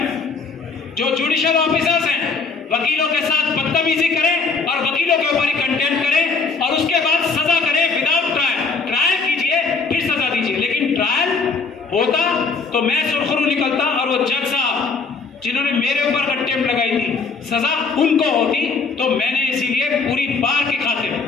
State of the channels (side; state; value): right; quieter; 4.5 dB